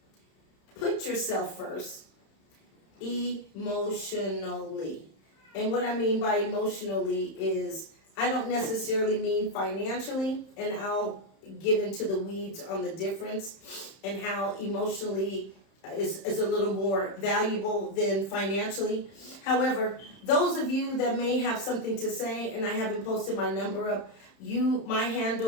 Put yourself first emotionally. And what I mean by emotionally is I don't necessarily mean financially, and I'll get into the weeds on the difference and how emotionally is a little more valuable than financially. However, those of you that may have something to say, and I haven't posted my number up, my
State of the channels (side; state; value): right; late; 31 ms